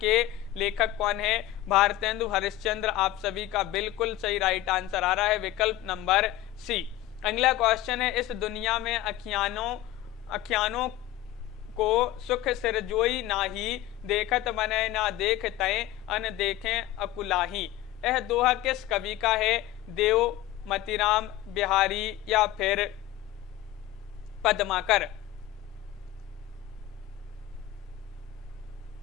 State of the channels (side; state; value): right; quieter; 14.0 dB